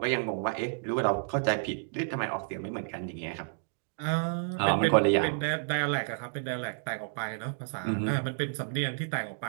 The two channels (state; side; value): silent; left; digital silence